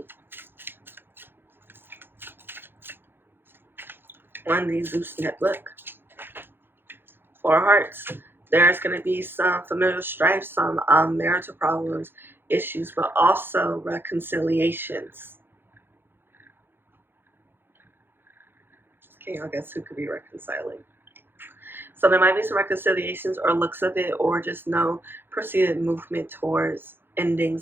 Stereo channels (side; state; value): left; late; 0.10 ms